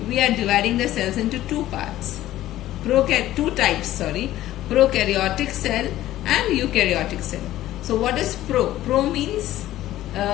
we are dividing the cells into two parts. Two types, prokaryotic cell and eukaryotic cell. So what is pro? Pro means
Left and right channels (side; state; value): right; quieter; 14.3 dB